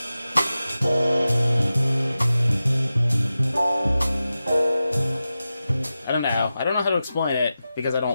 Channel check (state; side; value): inverted; both; correlation -0.93